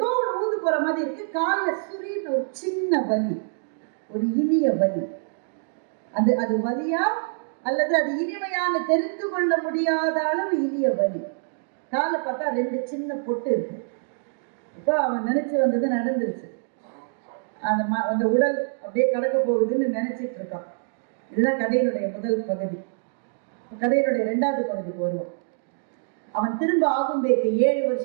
ஒரு ஊந்து போற மாதிரி இருக்கு. காலில் சுரின்னு ஒரு சின்ன வலி, ஒரு இனிய வலி. அது வலியா அல்லது அது இனிமையான தெரிந்து கொள்ள முடியாத அளவு இனிய வலி. காலில் பார்த்தா 2 சின்ன பொட்டு இருக்கு. இப்போ அவன் நினைச்சு வந்தது நடந்துருச்சு. அந்த உடல் அப்படியே கடக்க போகுதுன்னு நினைச்சிட்டு இருக்கான். இதுதான் கதையினுடைய முதல் பகுதி. கதையினுடைய 2வது பகுதிக்கு வருவோம். அவன் திரும்ப ஆகும்பேக்கு 7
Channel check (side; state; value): left; silent; digital silence